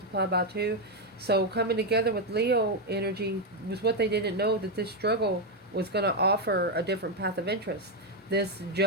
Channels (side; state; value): both; normal; correlation 0.03